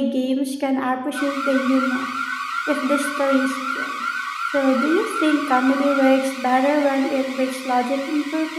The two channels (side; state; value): both; identical; correlation 1.00